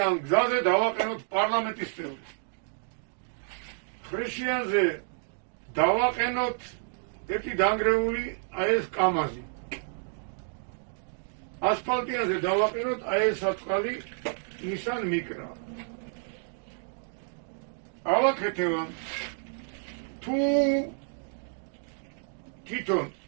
გზაზე დავაყენოთ პარლამენტის წევრი. ხრეშიანზე დავაყენოთ ერთი დანგრეული აი ეს კამაზი. ასფალტიანზე დავაყენოთ აი ეს საწყალი Nissan Micra. ავაკეთება თუ თვითონ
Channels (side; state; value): left; silent; 58 dB below the other